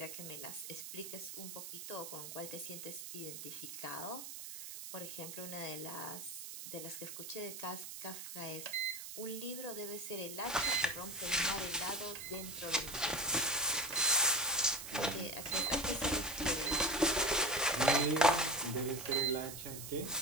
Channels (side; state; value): right; noise; hiss, 9 dB below the sound